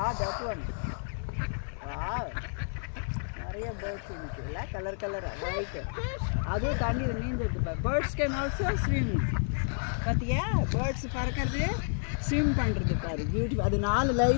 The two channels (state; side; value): silent; right; digital silence